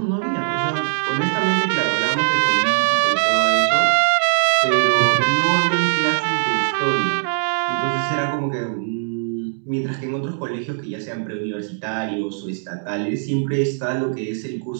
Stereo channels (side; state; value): left; silent; digital silence